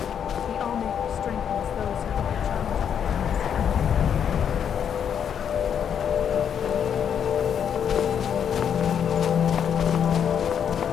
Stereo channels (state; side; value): quieter; right; 8.2 dB